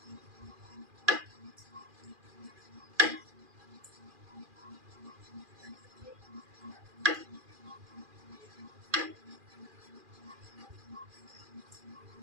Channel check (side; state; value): left; late; 2.4 ms